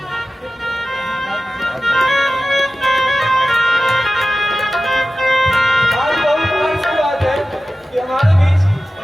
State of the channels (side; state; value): both; normal; correlation 0.95